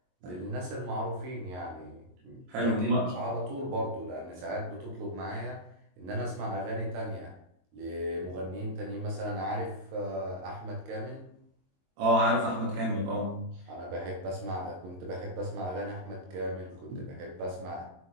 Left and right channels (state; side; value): late; left; 22 ms